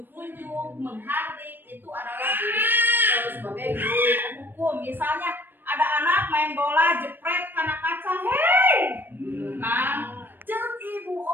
menghardik, itu adalah diri sebagai guru penghukum. Misalnya ada anak main bola jepret karena kaca, hei, nah, cek ibu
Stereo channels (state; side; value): late; left; 0.095 ms